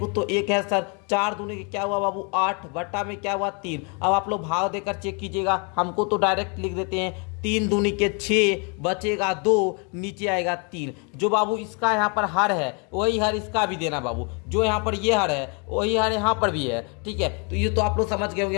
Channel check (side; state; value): right; quieter; 35.3 dB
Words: तो 1 है सर। 4 दूनी के क्या हुआ बाबू 8, बट्टा में क्या हुआ 3। अब आप लोग भाग देकर चेक कीजिएगा, हमको तो डायरेक्ट लिख देते हैं, 3 दूनी के 6, बचेगा 2, नीचे आएगा 3। जो बाबू इसका यहाँ पर हर है वही हर इसका भी देना बाबू, जो यहाँ पर ये हर है वही हर यहाँ पर भी है। ठीक है, तो ये तो आप लोग समझ गए होंगे,